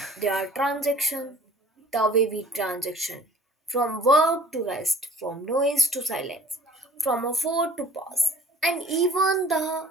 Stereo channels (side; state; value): both; normal; correlation 0.50